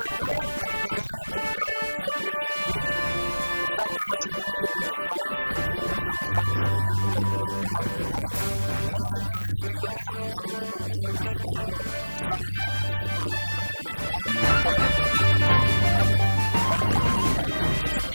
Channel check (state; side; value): inverted; both; correlation -1.00